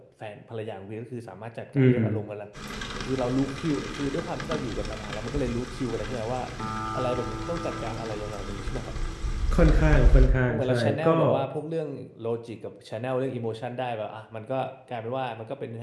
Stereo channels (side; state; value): both; identical; correlation 1.00